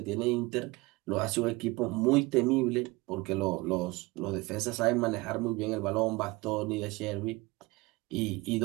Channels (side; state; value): left; quieter; 23.0 dB